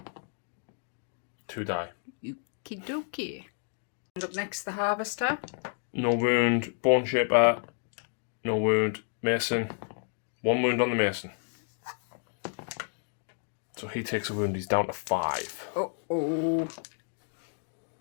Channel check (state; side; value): silent; right; 57 dB below the other